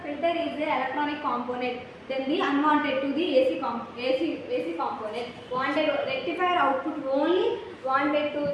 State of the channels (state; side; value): identical; both; correlation 1.00